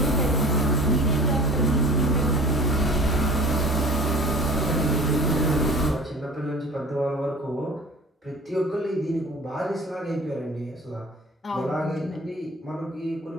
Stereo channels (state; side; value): normal; both; correlation 0.42